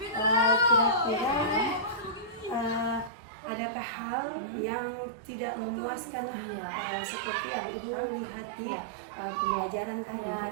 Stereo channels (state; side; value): drops out; left; at 3.1 s